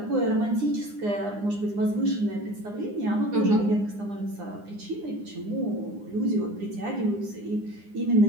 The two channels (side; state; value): left; late; 9.8 ms